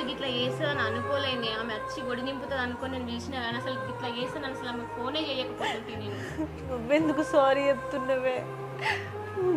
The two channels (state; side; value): identical; both; correlation 1.00